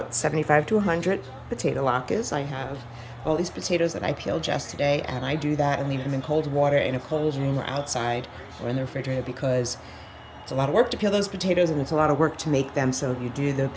75 to 100 potato latkes. I have all these potatoes that I peeled yesterday, and I do that and leave them in cold water in a cold room or outside or in the refrigerator because it's a lot of work to peel those potatoes and it's a lot of work to make them. So if you do the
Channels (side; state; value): both; identical; correlation 1.00